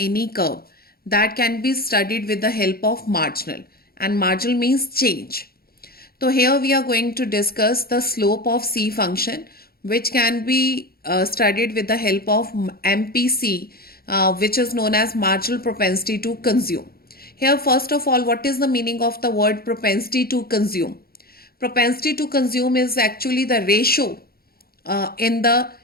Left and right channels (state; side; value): late; right; 0.44 ms